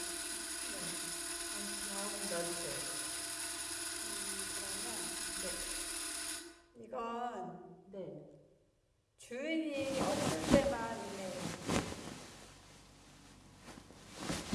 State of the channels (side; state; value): both; identical; correlation 1.00